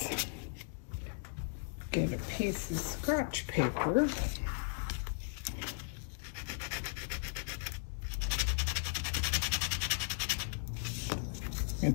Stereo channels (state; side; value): silent; right; digital silence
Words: get a piece of scratch paper. You can